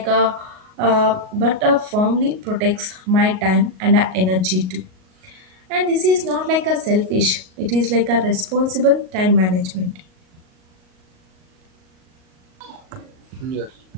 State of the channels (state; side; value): late; left; 38 ms